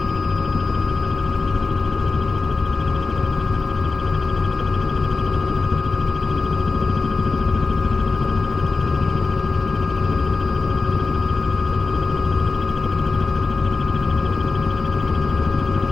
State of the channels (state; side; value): quieter; right; 4.1 dB